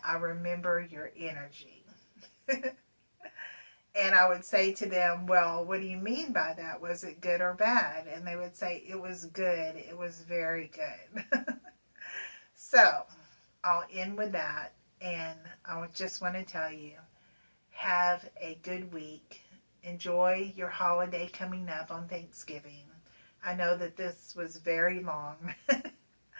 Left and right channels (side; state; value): both; inverted; correlation -1.00